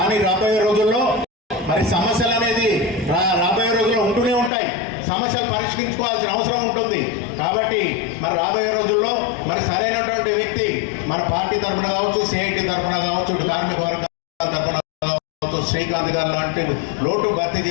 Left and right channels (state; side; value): drops out; right; at 4.5 s